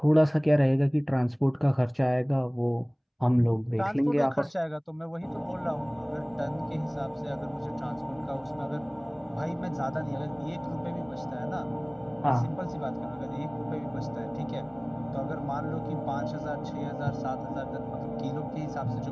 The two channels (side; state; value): both; identical; correlation 1.00